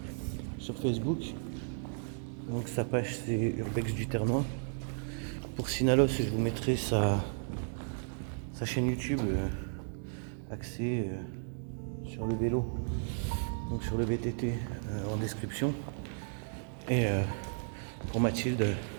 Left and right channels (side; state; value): left; silent; digital silence